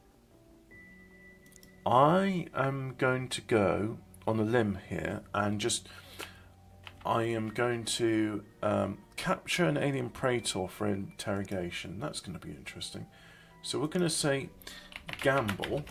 I am going to go on a limb here and I am going to capture an alien praetor for interrogation. That's going to be interesting. So we're going to say gamble,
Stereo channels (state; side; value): identical; both; correlation 1.00